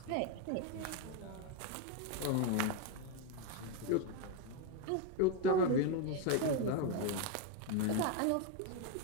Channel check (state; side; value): different; both; correlation 0.02